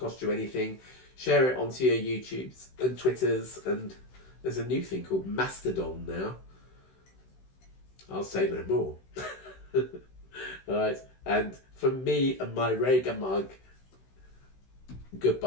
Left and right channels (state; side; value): late; right; 16 ms